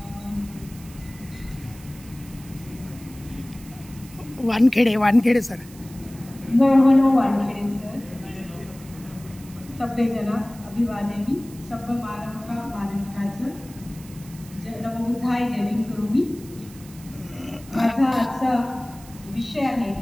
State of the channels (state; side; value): noise; right; hiss, 21 dB below the sound